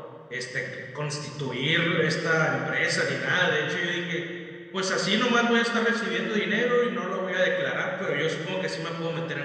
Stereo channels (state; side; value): identical; both; correlation 1.00